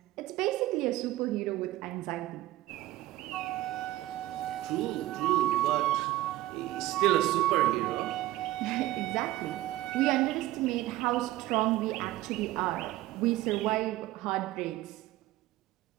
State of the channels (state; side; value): quieter; left; 16.0 dB